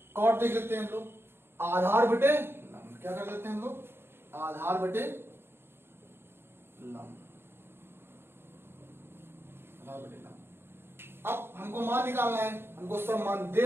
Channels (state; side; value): late; left; 0.11 ms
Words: कॉट देख लेते हैं हम लोग, आधार बटे लंब। क्या कर लेते हैं हम लोग, आधार बटे लंब। अब हमको मान निकालना है, हमको सब मान